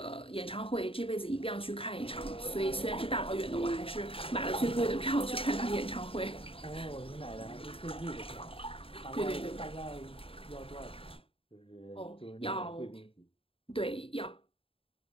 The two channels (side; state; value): right; late; 0.27 ms